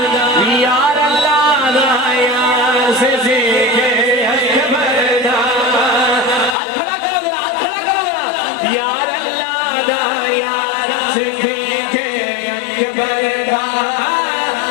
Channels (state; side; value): drops out; right; at 6.6 s